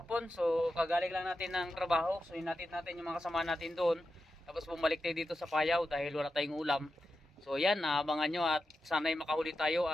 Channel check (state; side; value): normal; both; correlation 0.90